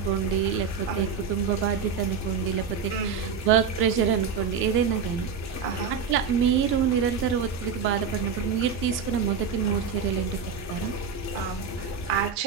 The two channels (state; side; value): quieter; left; 6.3 dB